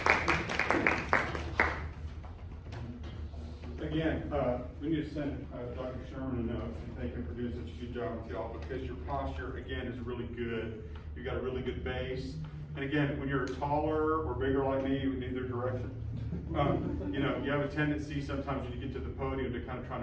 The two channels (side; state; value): both; identical; correlation 1.00